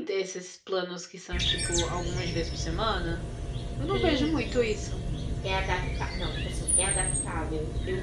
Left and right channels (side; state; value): both; identical; correlation 1.00